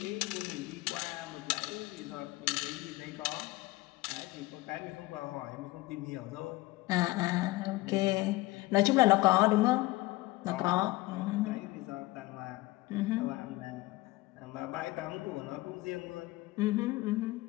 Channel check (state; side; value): quieter; right; 19.9 dB